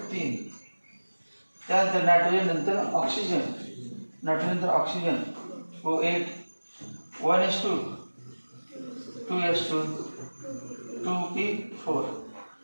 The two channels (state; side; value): inverted; both; correlation -1.00